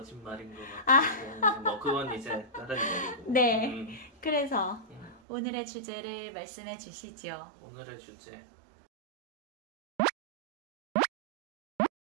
것 아, 같은데 뭐 그건 이제 다른 얘기고. 네. 그래서 음. 오늘의 주제를 말씀해 주시죠. 오늘의 주제.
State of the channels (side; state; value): left; drops out; at 5.2 s